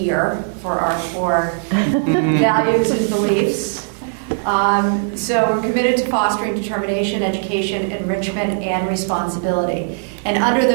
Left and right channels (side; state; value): left; silent; digital silence